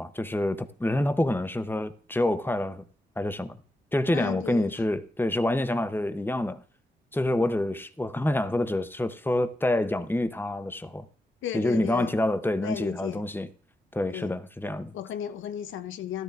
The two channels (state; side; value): normal; both; correlation 0.88